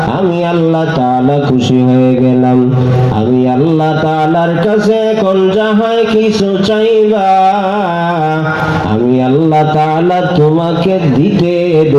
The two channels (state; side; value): identical; both; correlation 1.00